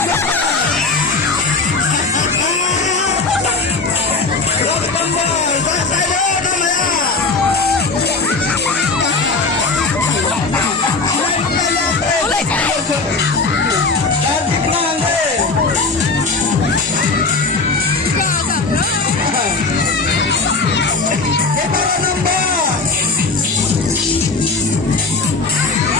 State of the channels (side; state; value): right; quieter; 3.9 dB